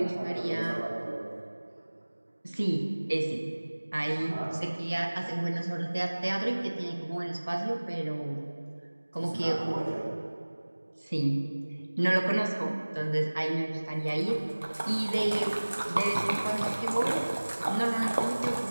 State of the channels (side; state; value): both; inverted; correlation -1.00